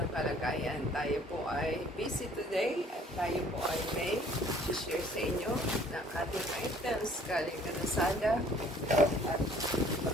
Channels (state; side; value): normal; both; correlation 0.56